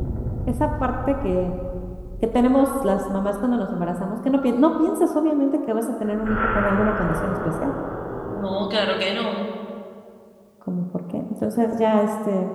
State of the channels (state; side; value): identical; both; correlation 1.00